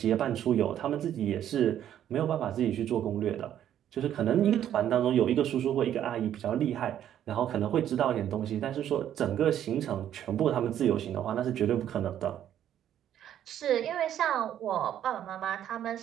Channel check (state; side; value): quieter; left; 10.7 dB